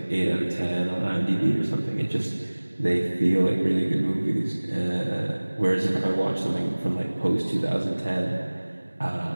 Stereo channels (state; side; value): inverted; both; correlation -1.00